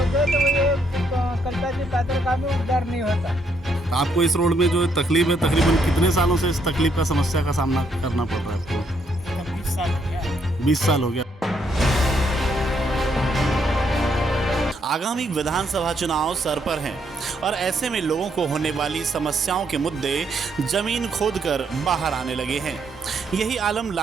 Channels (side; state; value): both; normal; correlation 0.73